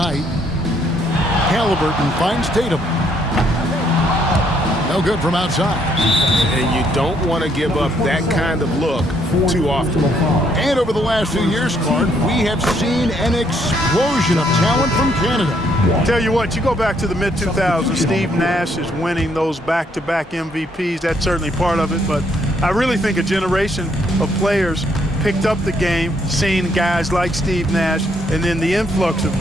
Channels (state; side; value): normal; both; correlation 0.70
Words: Halliburton finds Tatum. No good from outside. And you don't want to give up that kind of look too often. And over the last few years, Clark, we have seen an explosion of talent from Canada. Tell you what, you go back to the mid-2000s, Steve Nash is winning those back-to-back MVPs. That's certainly part of it, but I really think a generation of players picked up the game, seeing guys like Steve Nash, and then the influx of